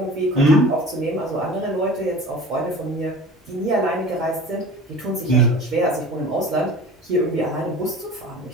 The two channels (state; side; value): normal; both; correlation 0.40